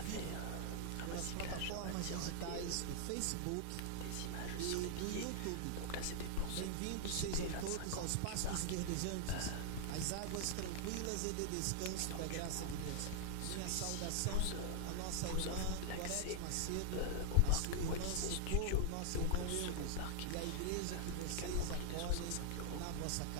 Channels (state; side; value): different; both; correlation 0.00